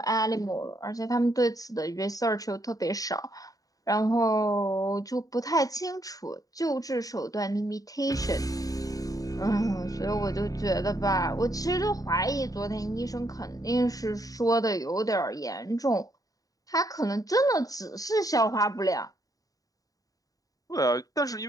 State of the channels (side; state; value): right; late; 0.17 ms